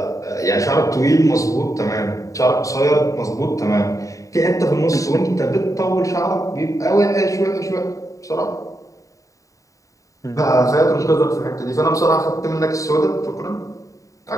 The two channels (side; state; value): right; late; 0.16 ms